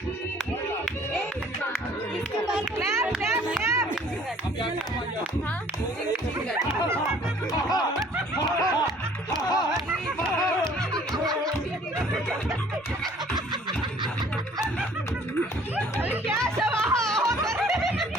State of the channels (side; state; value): both; normal; correlation 0.55